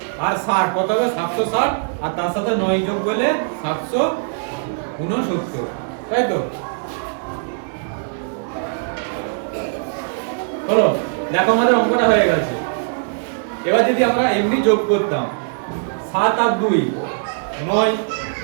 আর 60 কত হবে 760, আর তার সাথে 9 যোগ করলে 769, তাই তো। হলো, দেখো আমাদের অঙ্কটা হয়ে গেছে। এবার যদি আমরা এমনি যোগ করতাম 7 আর 2 9,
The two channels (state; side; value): silent; left; digital silence